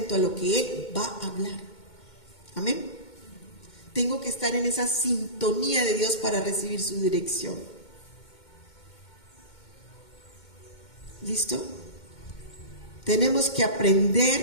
a lo que Él va a hablar. Amén. Tengo que estar en esa sintonía de Dios para recibir su dirección. ¿Listo? Tenemos que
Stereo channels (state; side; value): late; right; 2.2 ms